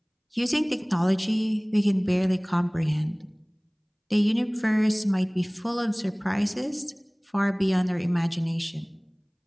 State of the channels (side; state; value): both; identical; correlation 1.00